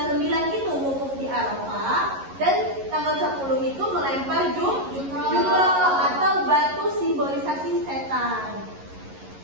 9 itu wukuf di Arafah, dan tanggal 10 itu melempar jumroh atau batu simbolisasi setan.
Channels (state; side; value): late; left; 11 ms